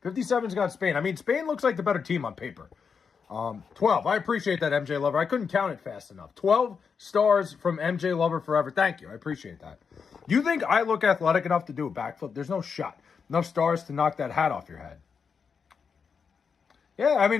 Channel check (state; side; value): quieter; right; 6.0 dB